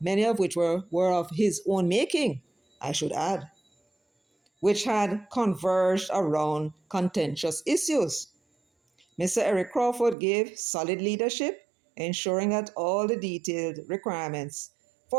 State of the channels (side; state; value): left; drops out; at 10.2 s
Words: of which were of his own making, I should add, which had converged around contentious issues. Mr. Eric Crawford gave solid leadership, ensuring that all the detailed requirements